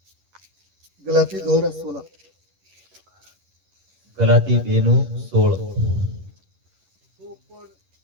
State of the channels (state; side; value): late; left; 11 ms